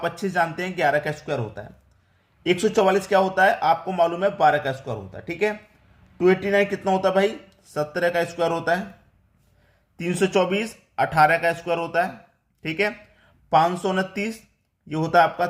अच्छे जानते हैं, 11 का स्क्वायर होता है। 144 क्या होता है आपको मालूम है, 12 का स्क्वायर होता है। ठीक है, 289 कितना होता है भाई? 17 का स्क्वायर होता है। 324 18 का स्क्वायर होता है। ठीक है, 529 ये होता है आपका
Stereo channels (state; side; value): identical; both; correlation 1.00